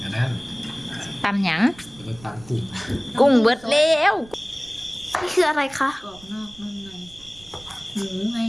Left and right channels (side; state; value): right; noise; rumble, 22 dB below the sound